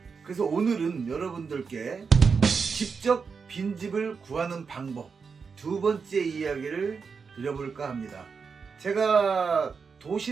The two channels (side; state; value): left; quieter; 5.5 dB